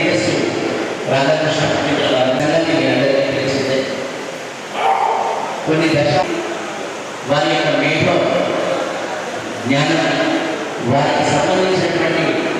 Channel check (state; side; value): identical; both; correlation 1.00